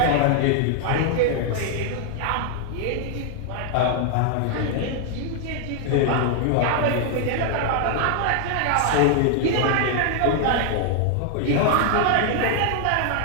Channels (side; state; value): both; different; correlation 0.00